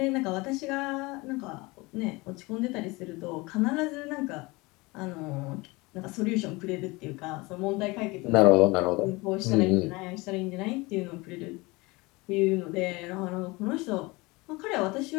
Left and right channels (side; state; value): right; quieter; 23.8 dB